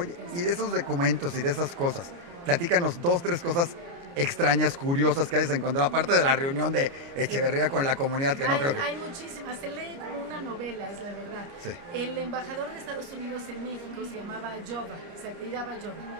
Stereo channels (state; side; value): late; left; 29 ms